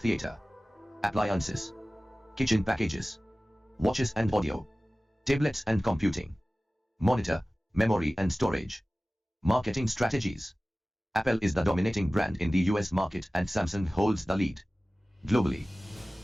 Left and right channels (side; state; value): both; normal; correlation 0.97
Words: appliances, kitchen packages, watches and audio, tablets and computing, monitor, memory and storage. Marketing strategies: Apple is the dominating brand in the US market and Samsung holds the lead globally.